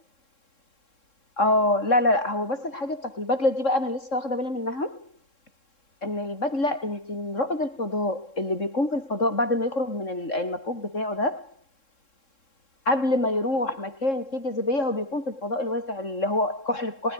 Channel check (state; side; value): late; right; 3.7 ms